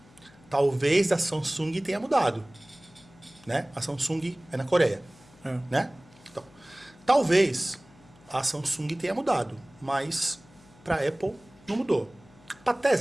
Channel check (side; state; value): left; noise; hum, 26 dB below the sound